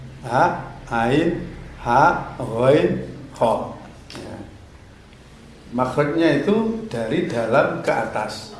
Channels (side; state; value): both; identical; correlation 1.00